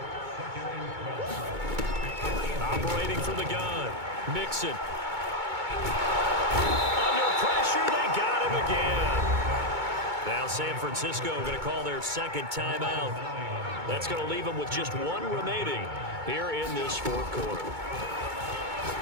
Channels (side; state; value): left; late; 2.2 ms